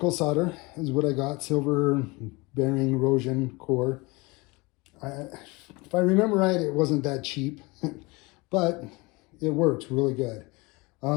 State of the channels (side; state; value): right; quieter; 25.0 dB